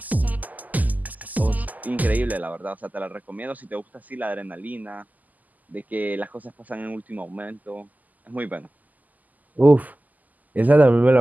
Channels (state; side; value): late; left; 0.081 ms